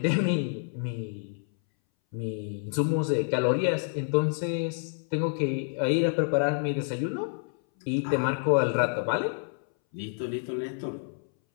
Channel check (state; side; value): silent; right; 59 dB below the other